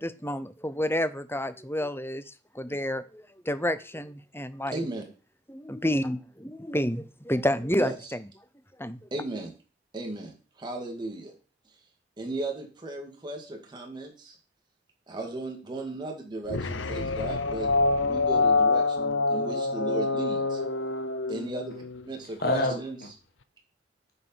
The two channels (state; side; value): normal; both; correlation -0.04